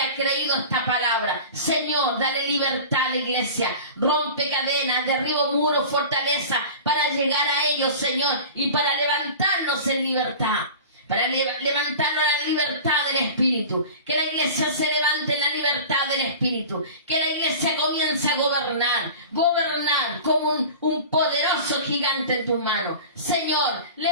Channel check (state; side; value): inverted; both; correlation -0.36